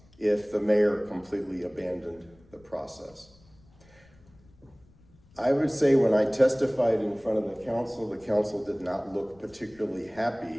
if the mayor completely abandoned the process. I would say when I testified in front of the council did not look particularly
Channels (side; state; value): left; noise; rumble, 28 dB below the sound